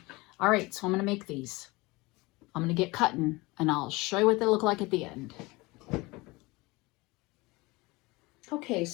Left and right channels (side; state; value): right; quieter; 23.0 dB